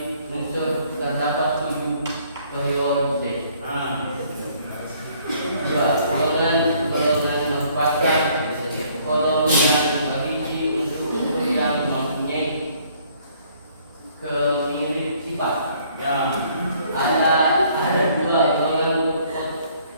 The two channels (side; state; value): both; inverted; correlation -0.62